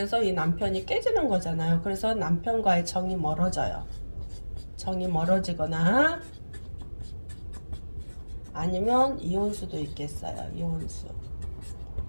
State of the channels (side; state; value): both; inverted; correlation -1.00